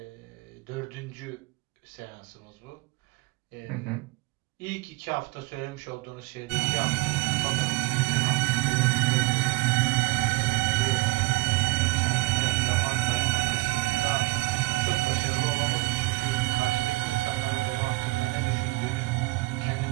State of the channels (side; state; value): left; quieter; 22.3 dB